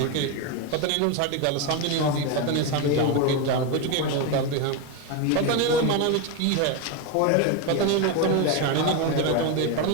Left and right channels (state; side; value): different; both; correlation 0.03